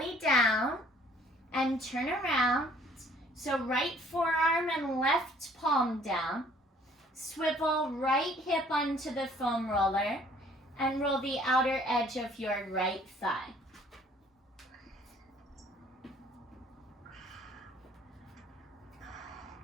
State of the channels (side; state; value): both; normal; correlation 0.58